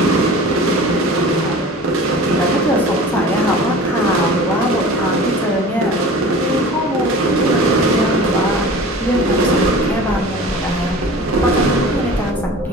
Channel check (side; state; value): both; normal; correlation 0.40